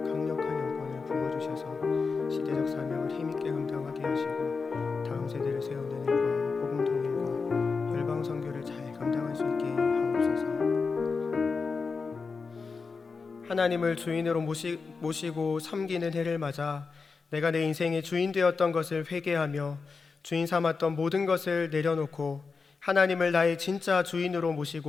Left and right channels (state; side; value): quieter; right; 4.7 dB